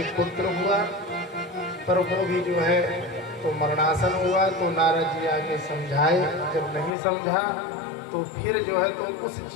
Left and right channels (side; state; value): right; drops out; at 6.9 s